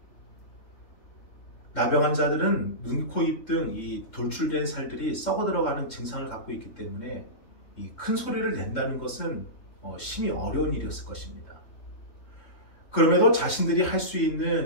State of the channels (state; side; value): late; right; 3.7 ms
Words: 나병 환자들은 눈, 코, 입 등 이 돌출된 살들이 썩어 들어가는 증상을 갖고 있기 때문에 이 큰 소리를 낸다는 것은 심히 어려운 일이었을 것입니다. 그럼에도 자신들이 할 수